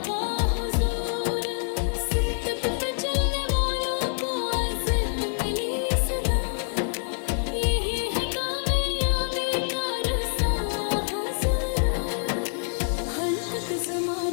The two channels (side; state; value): right; silent; digital silence